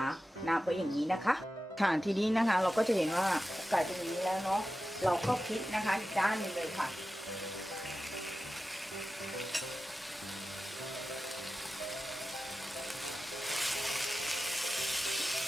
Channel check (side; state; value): both; normal; correlation 0.93